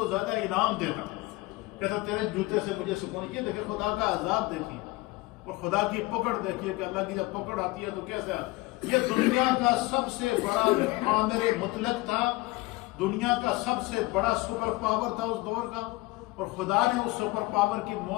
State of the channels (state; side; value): quieter; right; 21.7 dB